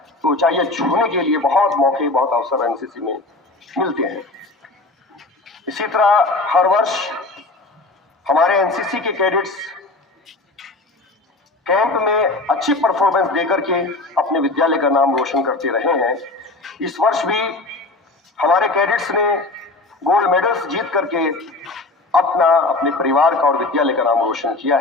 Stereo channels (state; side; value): quieter; right; 3.1 dB